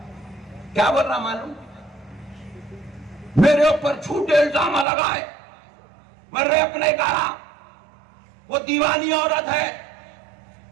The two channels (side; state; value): left; drops out; at 4.9 s